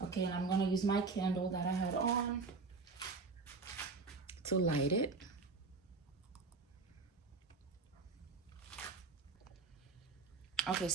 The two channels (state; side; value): quieter; left; 4.2 dB